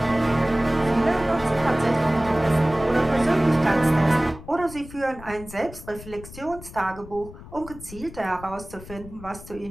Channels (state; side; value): noise; left; rumble, 16 dB below the sound